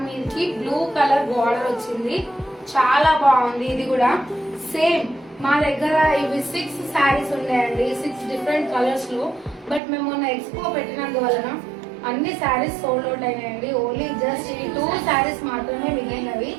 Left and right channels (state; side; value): drops out; left; at 9.8 s